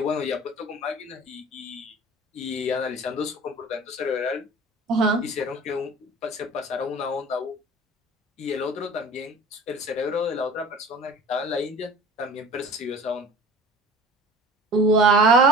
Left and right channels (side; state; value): both; normal; correlation 0.42